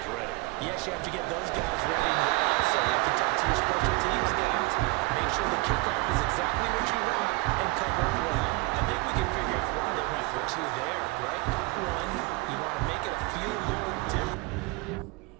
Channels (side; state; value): left; quieter; 25.1 dB